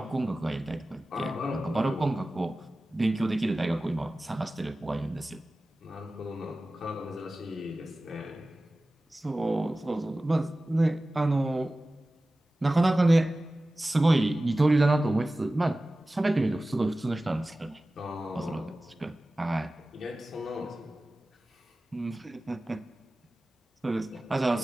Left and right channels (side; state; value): both; normal; correlation 0.96